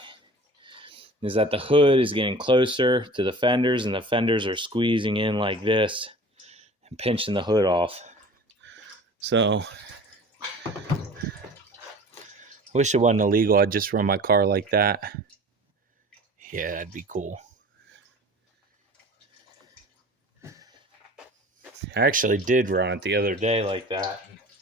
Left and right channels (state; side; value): normal; both; correlation 0.42